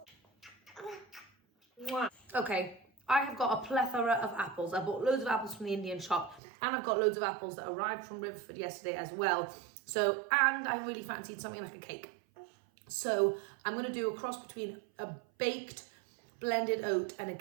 Okay, I have got a plethora of apples. I bought loads of apples from the Indian shop and I've got loads of apples that arrived from Riverford yesterday as well. So, and I really fancied something like a cake. So I'm going to do a cross between a baked blended oat and a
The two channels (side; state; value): left; drops out; at 6.4 s